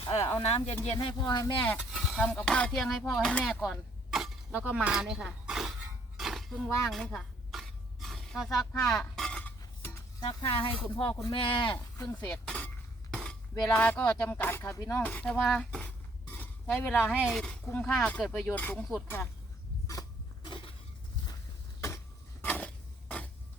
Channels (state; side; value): normal; both; correlation 0.65